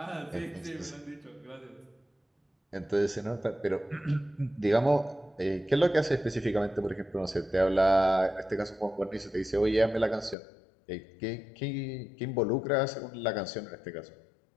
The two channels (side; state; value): right; drops out; at 10.4 s